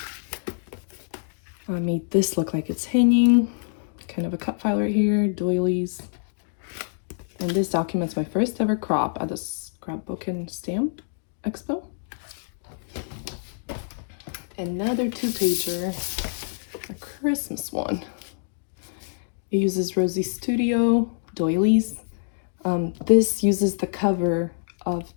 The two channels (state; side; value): silent; right; digital silence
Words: I made this look like it's hanging, kind of a cut file right here, doilies. And this documents my first ever crop at the Scrapbook and Stamp Expo. Another 2-pager, a Christmas one. It uses Rosie Studio doilies. This uses the cover of